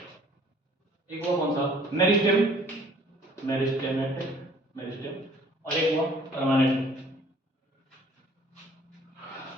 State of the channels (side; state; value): both; normal; correlation 0.55